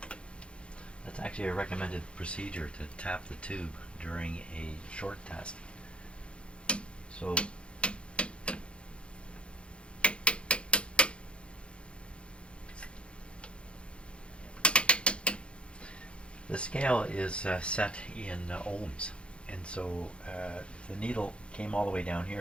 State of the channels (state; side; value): late; right; 0.058 ms